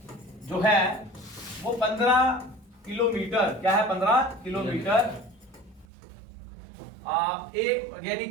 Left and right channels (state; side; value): drops out; left; at 5.9 s